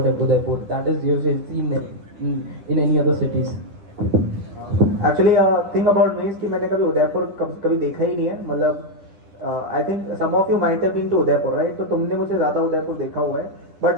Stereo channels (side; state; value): left; late; 10 ms